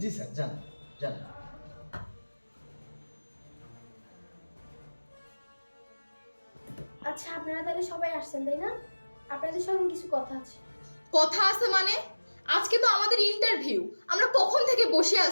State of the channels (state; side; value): inverted; both; correlation -1.00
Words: জি স্যার, যান যান। আচ্ছা, আপনারা তাহলে সবাই আসছেন তাই না? আপনাদের সঙ্গে কিছু কথা আছে। কথা আছে মানে? আজকে তো আমাদের ইন্টারভিউ, আমরা কখন থেকে বসে